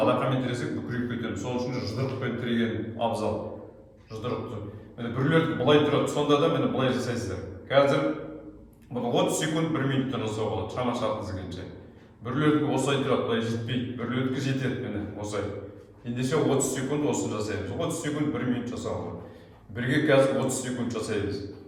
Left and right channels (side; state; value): both; identical; correlation 1.00